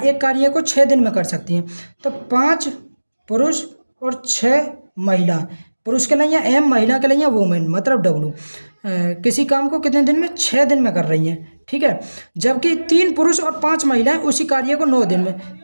कार्य को 6 दिन में कर सकती हैं। तो 5 पुरुष और 6 महिला, पुरुष के लिए एम, महिला के लिए वुमेन मतलब डब्लू, किसी काम को कितने दिन में 6 दिन में कर रही हैं। ठीक है, जबकि 3 पुरुष और 5 महिलाएं उसी कार्य को 9 दिन में,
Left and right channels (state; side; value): inverted; both; correlation -1.00